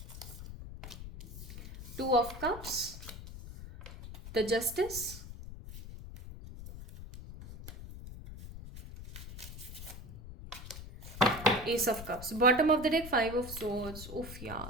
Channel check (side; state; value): left; noise; rumble, 12 dB below the sound